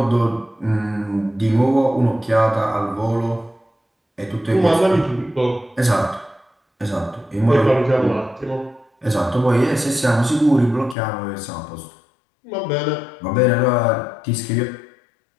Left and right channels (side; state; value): right; drops out; at 11.0 s